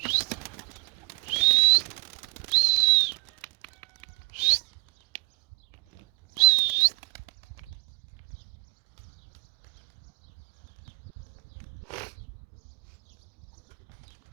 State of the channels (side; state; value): left; quieter; 30.1 dB